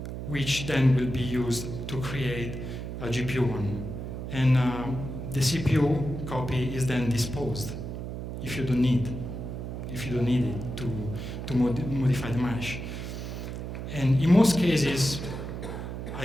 which then will be used to create a GPU one. And the CPU copy is then disposed if you don't need it to modify the mesh. And in most cases,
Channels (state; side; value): noise; right; hum, 6 dB below the sound